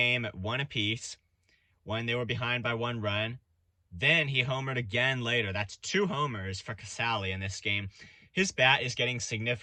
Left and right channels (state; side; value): identical; both; correlation 1.00